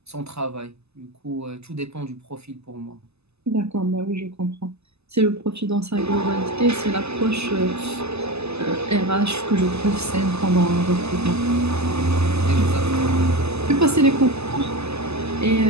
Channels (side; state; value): left; late; 0.79 ms